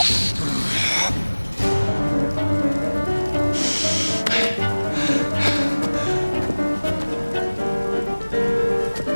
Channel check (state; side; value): inverted; both; correlation -1.00